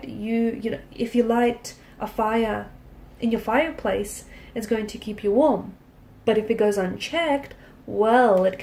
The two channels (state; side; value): identical; both; correlation 1.00